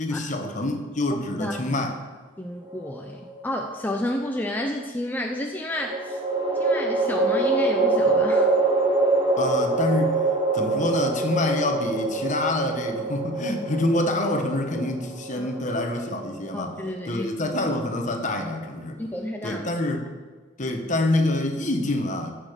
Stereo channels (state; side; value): normal; both; correlation 0.43